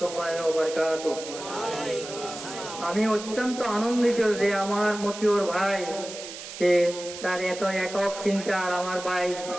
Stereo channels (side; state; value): right; noise; hiss, 11 dB below the sound